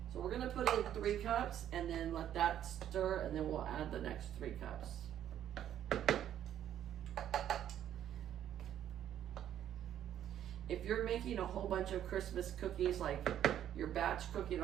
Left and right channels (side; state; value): left; quieter; 10.7 dB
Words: So we're gonna put in 3 cups and then let that stir, and then we'll add the next 3 cups. If you're making a whole bunch of Christmas cookies, like you're batch cooking